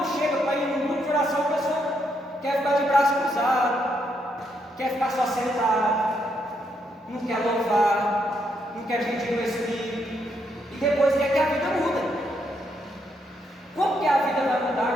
chega para ir no grupo de oração, a pessoa quer ficar de braço cruzado, quer ficar só sentado, não quer louvar, não quer pedir o Espírito, e depois quer que a vida muda. Como que a vida vai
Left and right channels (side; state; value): both; normal; correlation 0.77